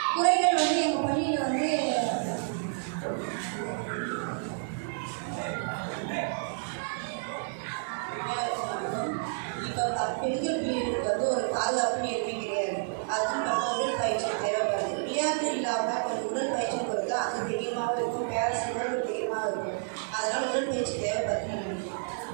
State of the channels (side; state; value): left; silent; digital silence